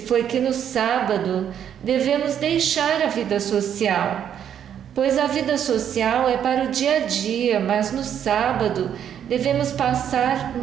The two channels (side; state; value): left; quieter; 9.2 dB